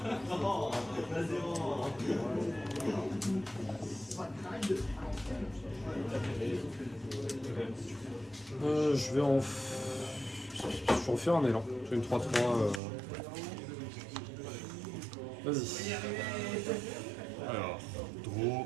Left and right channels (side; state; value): left; drops out; at 12.8 s